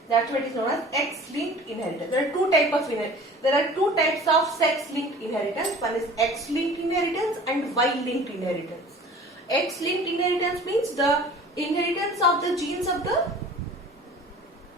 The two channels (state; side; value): normal; both; correlation 0.45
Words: that's what is known as X-linked inheritance. There are two types of sex-linked inheritance. One is X-linked inheritance and Y-linked inheritance. X-linked inheritance means the inheritance of the genes of the